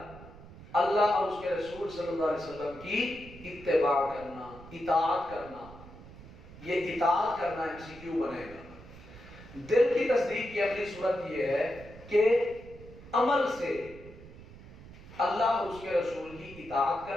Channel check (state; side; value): noise; right; rumble, 17 dB below the sound